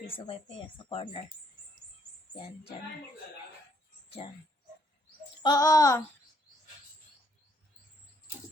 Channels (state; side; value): normal; both; correlation 0.69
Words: wifi yan, sa corner. Yan, dyan. Dyan. Oo!